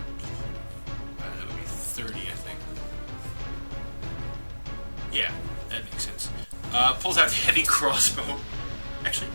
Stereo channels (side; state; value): both; inverted; correlation -1.00